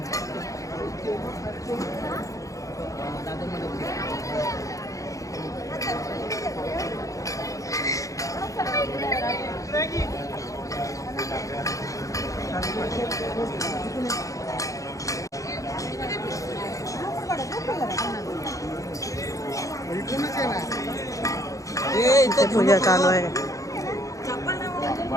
इथे पूजा चालू आहे.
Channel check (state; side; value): late; right; 0.16 ms